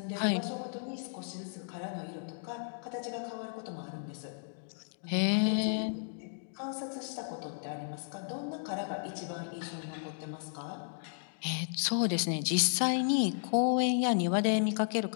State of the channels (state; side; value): silent; right; digital silence